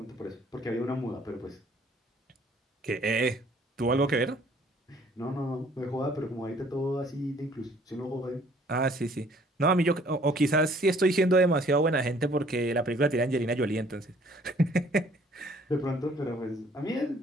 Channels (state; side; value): normal; both; correlation 0.59